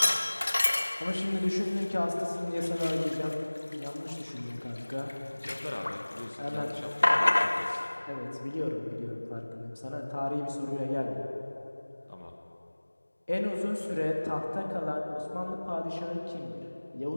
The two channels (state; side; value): inverted; both; correlation -1.00